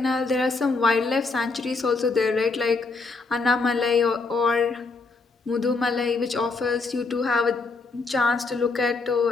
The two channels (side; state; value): right; quieter; 4.0 dB